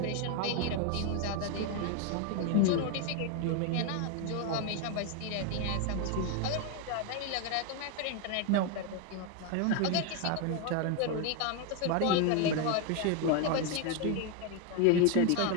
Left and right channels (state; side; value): different; both; correlation 0.02